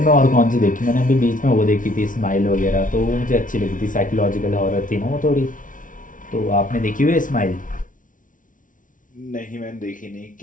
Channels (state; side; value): late; right; 0.38 ms